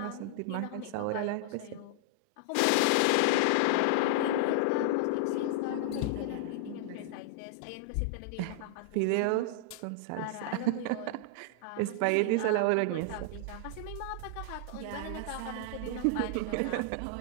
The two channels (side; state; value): both; different; correlation 0.00